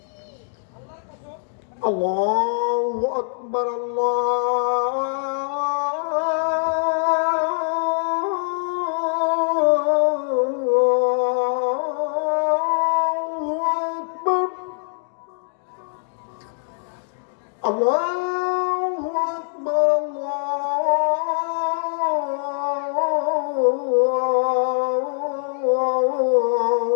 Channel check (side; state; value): right; silent; digital silence